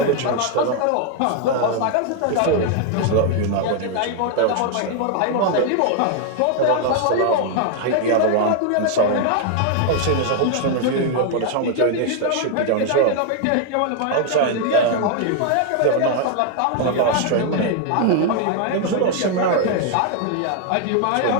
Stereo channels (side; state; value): both; different; correlation 0.00